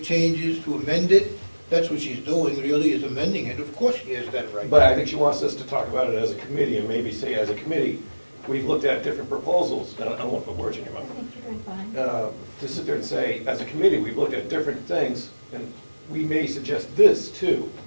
changes, to amend it. That's what she's doing, really, is amending it. Of course she has that right. But I think she wants us to talk about it as a committee, and maybe say, as a committee, we've looked at different proposals, and I don't want to put words in your I mouth. think you're doing fine. To sit there and say, as a committee, we've looked at different things, and we may suggest this too,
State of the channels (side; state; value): both; inverted; correlation -1.00